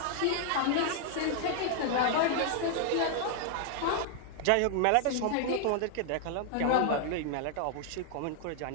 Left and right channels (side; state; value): both; different; correlation 0.00